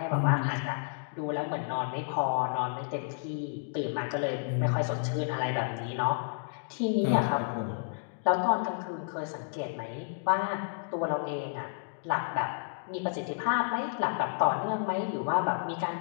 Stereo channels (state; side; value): silent; right; digital silence